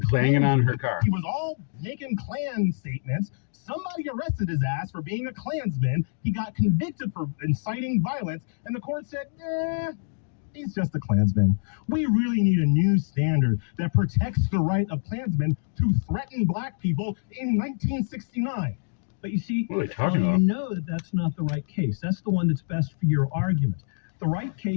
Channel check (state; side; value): silent; right; digital silence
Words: banging on her Klansman. car. He was all making Klan statements. Somebody arrested his ass for being a Klansman. He got convicted for inciting violence, and the court said, he's just a Klansman. We really need a new standard that protects the right of Klansmen to threaten black people in 1969. But you see, What are they talking you about? know that that's not the right case. That's the one that's best for your argument. The right